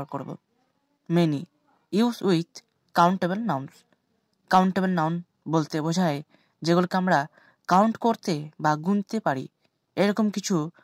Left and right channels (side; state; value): both; identical; correlation 1.00